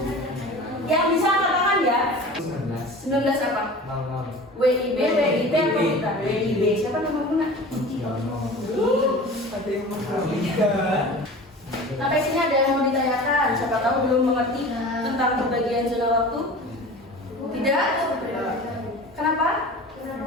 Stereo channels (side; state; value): both; normal; correlation 0.38